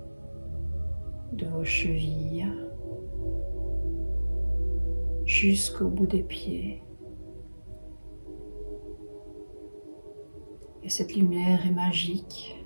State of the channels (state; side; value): inverted; both; correlation -1.00